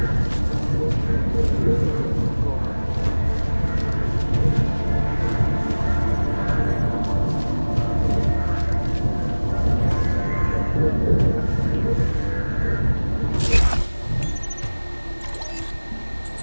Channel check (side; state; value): both; inverted; correlation -1.00